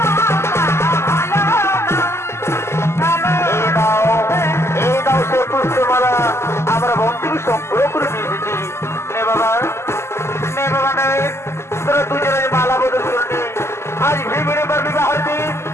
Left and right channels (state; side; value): late; right; 0.13 ms